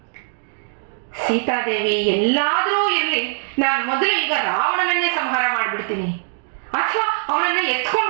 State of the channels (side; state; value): left; silent; 65 dB below the other